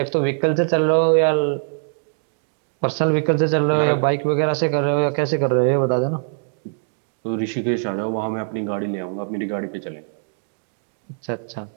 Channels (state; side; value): silent; left; 62 dB below the other